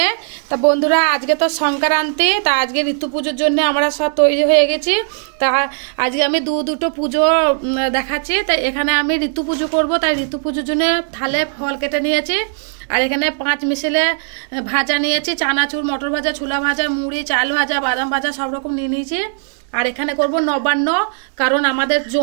তা বন্ধুরা, আজকে তো সংক্রান্তি, তা আজকে ঋতু পুজোর জন্য আমরা সব তৈরি হয়ে গেছি। তা আজকে আমি দুটো পুজো দেখাচ্ছি। তাই এখানে আমি ঋতু পুজো করবো, তাই ঋতু পুজোর জন্য থালে ফল কেটে নিয়েছি। আর এখানে 5 মিশালে ভাজা নিয়েছি, চানাচুর, মটর ভাজা, ছোলা ভাজা, মুড়ি, চাল ভাজা, বাদাম ভাজা সব রকম নিয়ে নিয়েছি। আর এখানে করব নবান্ন, কারণ আমাদের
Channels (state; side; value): silent; left; 58 dB below the other